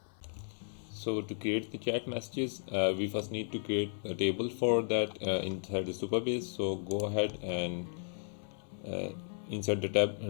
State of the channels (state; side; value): silent; right; 55 dB below the other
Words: So to create the chat messages, we first need to create a table for that inside the Supabase. So go ahead and inside the